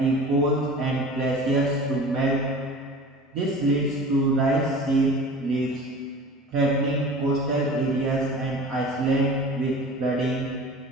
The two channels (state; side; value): normal; both; correlation 0.39